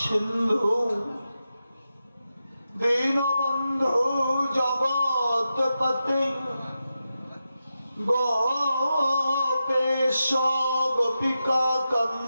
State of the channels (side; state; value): both; inverted; correlation -0.90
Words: দীনবন্ধু জগৎপতে গোপেশ গোপিকা